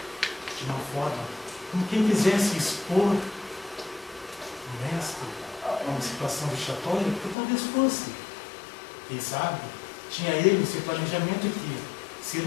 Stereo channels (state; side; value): drops out; right; at 7.4 s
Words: de uma forma como quem quisesse expor o mestre a uma situação vexatória, porque talvez fosse. Quem sabe, tinha ele esse planejamento que, se